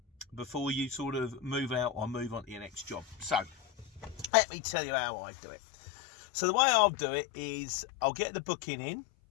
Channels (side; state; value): right; drops out; at 4.3 s